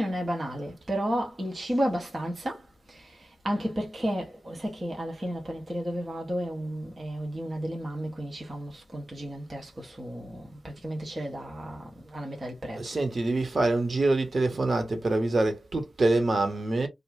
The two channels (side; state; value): both; normal; correlation 0.94